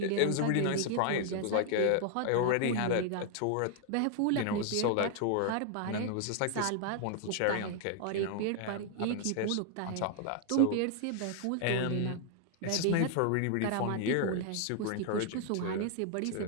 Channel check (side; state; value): both; different; correlation 0.00